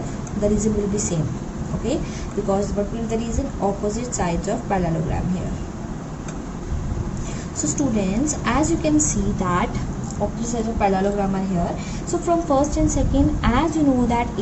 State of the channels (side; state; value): both; identical; correlation 1.00